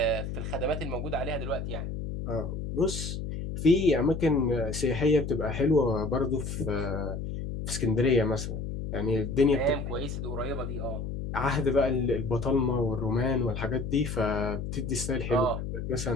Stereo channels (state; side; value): noise; left; hum, 5 dB below the sound